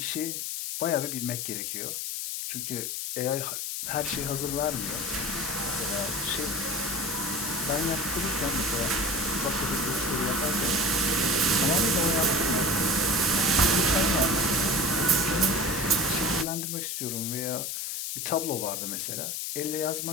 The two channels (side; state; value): left; noise; hiss, 3 dB below the sound